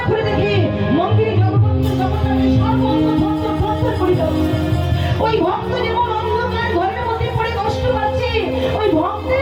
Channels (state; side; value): identical; both; correlation 1.00